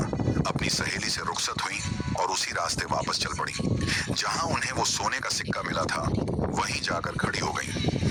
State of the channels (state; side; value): identical; both; correlation 1.00